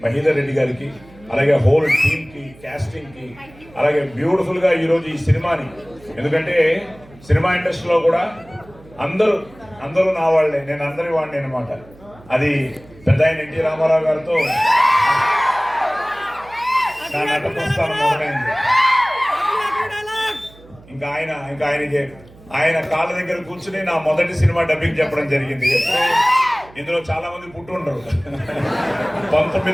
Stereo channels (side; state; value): right; noise; hum, 23 dB below the sound